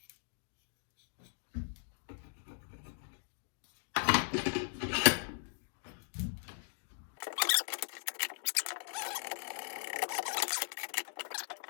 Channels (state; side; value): silent; right; digital silence